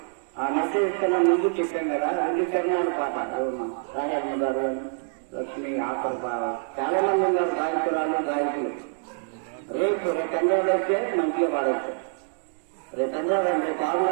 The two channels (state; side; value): silent; left; 61 dB below the other